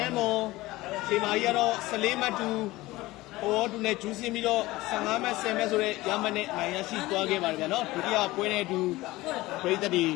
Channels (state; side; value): quieter; right; 19.0 dB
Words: ဲမွန်ခြေမာကြီးကတော့14မှတ်တူဟိုတူနဲ့ဂျူးစင်းပြီးတော့15မှတ်10မှတ်ဆိုတဲ့ရမနဲ့နိုင်ရရှိသွားခဲ့ပါတယ်ဗျာနော်ဒုတိယပွဲနဲ့အတူပရိသတ်တွေ